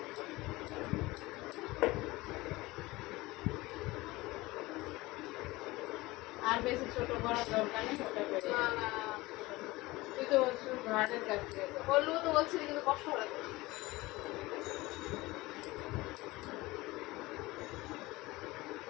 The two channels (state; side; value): quieter; right; 20.4 dB